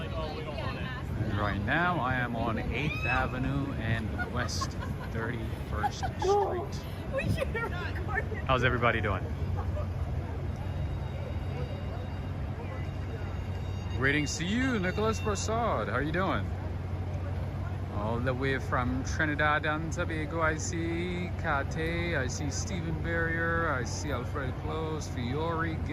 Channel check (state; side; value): identical; both; correlation 1.00